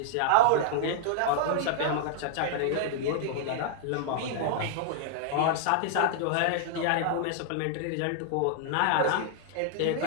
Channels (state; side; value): different; both; correlation -0.01